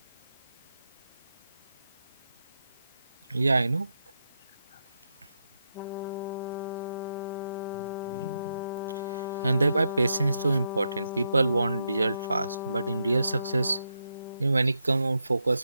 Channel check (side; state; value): both; inverted; correlation -0.82